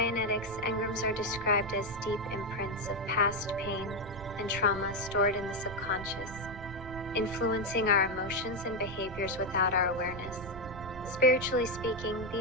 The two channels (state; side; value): noise; right; rumble, 13 dB below the sound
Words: engrams are described as deep imprints of past pain and trauma stored in the subconscious, influencing our emotions and behaviors without our awareness. Spiritually speaking,